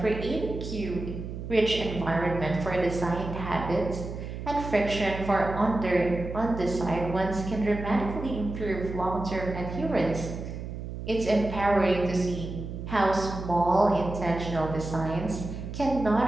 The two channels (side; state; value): right; noise; hum, 8 dB below the sound